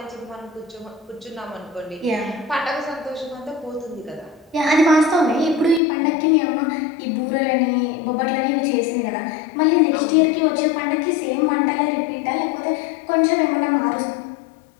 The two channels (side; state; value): right; drops out; at 5.8 s